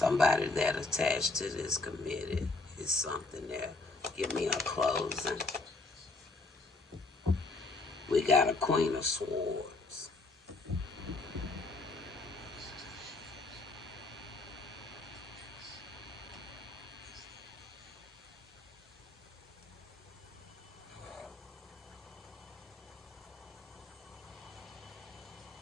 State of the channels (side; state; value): right; quieter; 3.4 dB